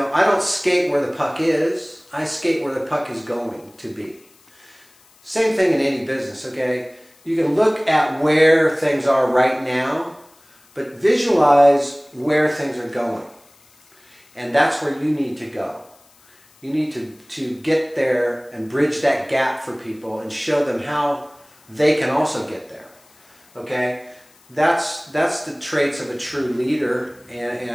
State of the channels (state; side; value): noise; left; hiss, 30 dB below the sound